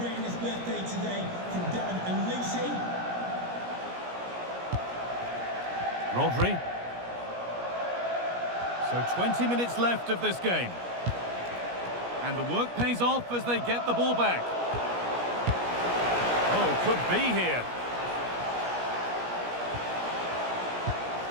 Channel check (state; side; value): late; left; 17 ms